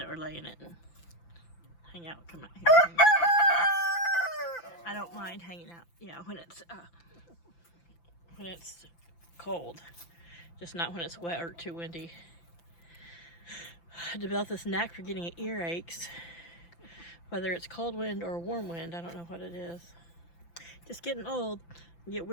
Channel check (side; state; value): right; late; 5.9 ms